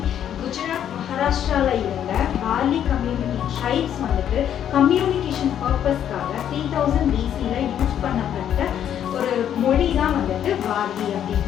குஜராத் மகாராஷ்டிராவில் இருந்த வார்லி கம்யூனிட்டி ட்ரைப்ஸ் வந்துட்டு கம்யூனிகேஷன் பர்பஸ்க்காக 3000 BCயில் யூஸ் பண்ணப்பட்ட ஒரு மொழி தான் வந்துட்டு வார்லி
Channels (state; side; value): quieter; right; 9.9 dB